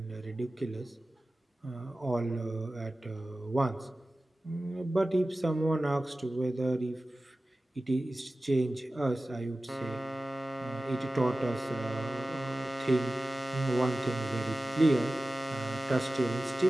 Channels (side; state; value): both; normal; correlation 0.96